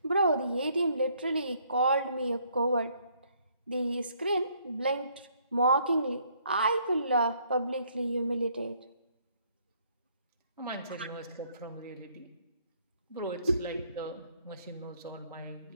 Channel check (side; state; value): both; inverted; correlation -0.66